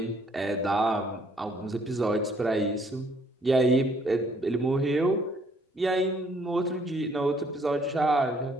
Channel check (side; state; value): both; normal; correlation 0.64